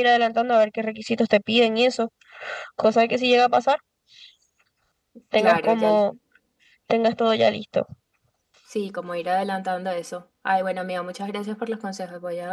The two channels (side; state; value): both; identical; correlation 1.00